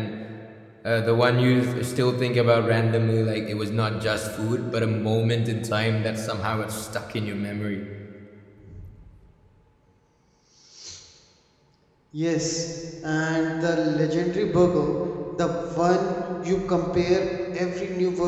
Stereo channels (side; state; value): both; identical; correlation 1.00